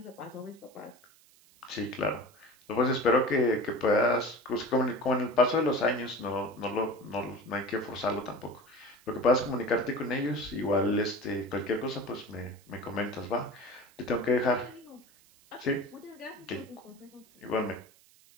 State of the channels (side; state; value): right; noise; hiss, 28 dB below the sound